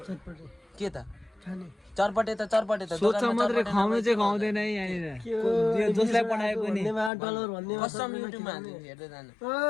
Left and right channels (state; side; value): drops out; right; at 7.1 s